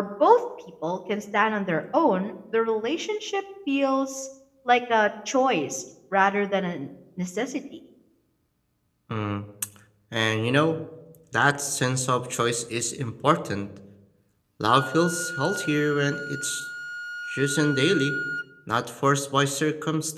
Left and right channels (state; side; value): identical; both; correlation 1.00